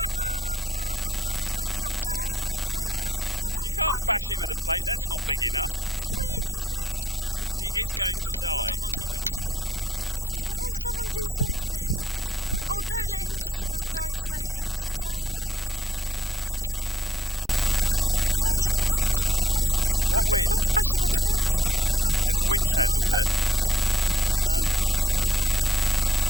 What do I bash it Oh with? my The plate? god. You can't bash it with a plate, that's not big enough. Quick, he's going to die. He is going to die. Got a monkey wrench. Oh, someone do something. Oh, don't let him just die slowly. He's drowning. Jake, bash him on the head. What with? Bash him on the head. Just pick him up and There's a bash winch him. handle there. No? Why not that?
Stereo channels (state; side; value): normal; both; correlation 0.75